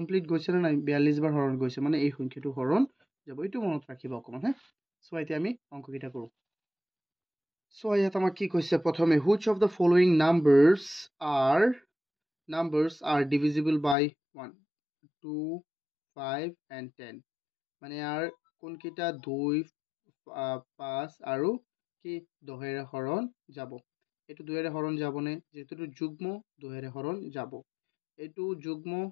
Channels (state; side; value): drops out; right; at 14.0 s